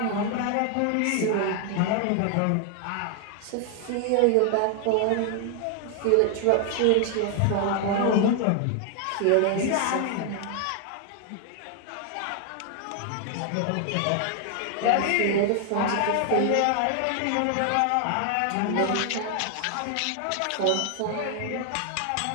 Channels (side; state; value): both; different; correlation 0.00